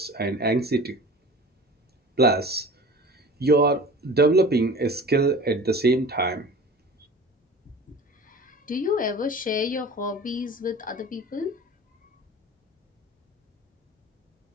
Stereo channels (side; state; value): both; normal; correlation 0.39